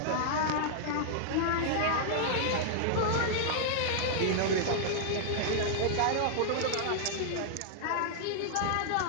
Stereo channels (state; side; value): different; both; correlation 0.00